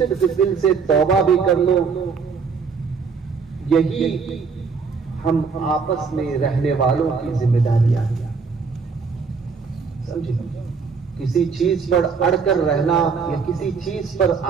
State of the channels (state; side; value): quieter; left; 5.3 dB